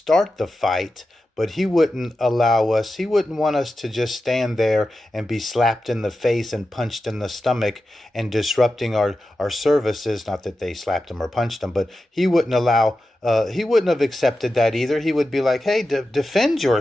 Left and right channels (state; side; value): normal; both; correlation 0.91